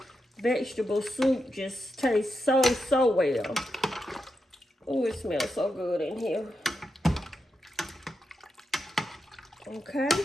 vegetable soup just tastes so well. Oh, it smells so good in here. Okay.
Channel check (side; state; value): both; normal; correlation 0.87